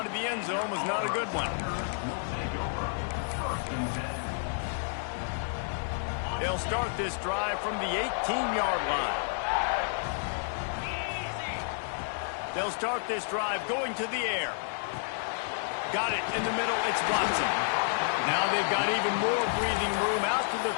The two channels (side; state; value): right; silent; digital silence